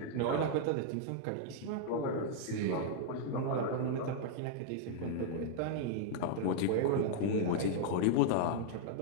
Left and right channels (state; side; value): different; both; correlation -0.01